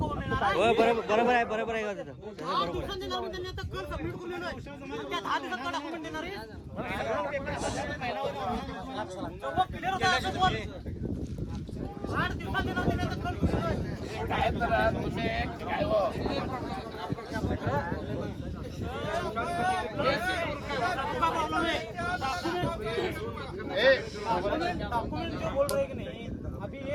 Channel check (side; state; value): both; identical; correlation 1.00